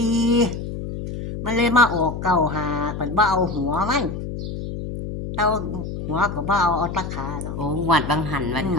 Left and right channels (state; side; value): noise; left; hum, 6 dB below the sound